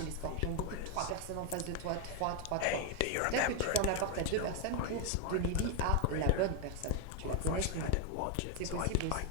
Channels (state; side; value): different; both; correlation 0.01